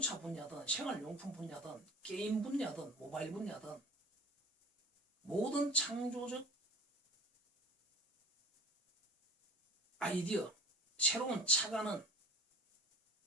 분야든 생활용품 분야든 게임 분야든 모바일 분야든 모든 창조적 아이디어, 새로운 착안은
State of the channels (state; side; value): normal; both; correlation 0.42